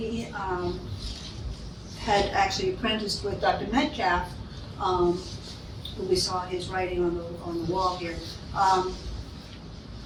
had actually apprenticed with Dr. Metcalf, who we saw his writing on the wall here.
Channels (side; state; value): both; identical; correlation 1.00